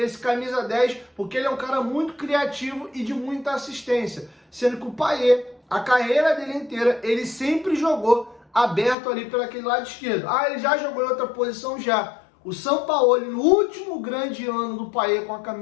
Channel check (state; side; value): drops out; right; at 9.0 s